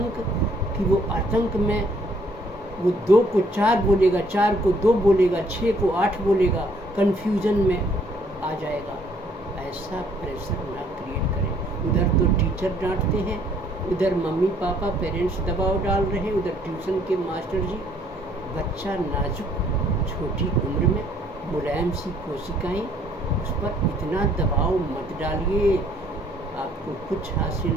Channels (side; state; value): both; normal; correlation 0.63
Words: कि वो आतंक में वो 2 को 4 बोलेगा, 4 को 2 बोलेगा, 6 को 8 बोलेगा, कन्फ्यूज़न में आ जाएगा। ऐसा प्रेशर ना क्रिएट करें। उधर तो टीचर डांटते हैं, उधर मम्मी पापा पेरेंट्स दबाव डाल रहे हैं, उधर ट्यूशन के मास्टर जी। बच्चा नाजुक छोटी उम्र में मुलायम सी कोशिकाएं, उस पर इतना दबाव मत डालिए, आपको कुछ